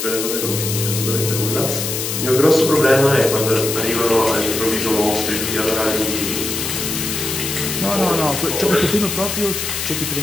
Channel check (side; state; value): left; noise; hiss, 3 dB below the sound